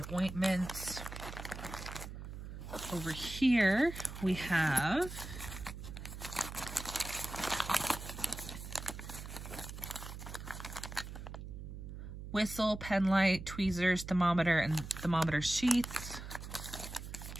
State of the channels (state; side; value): noise; right; hum, 10 dB below the sound